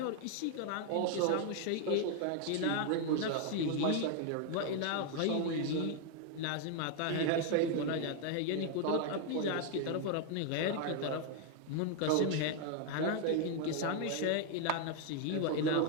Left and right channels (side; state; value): both; different; correlation 0.00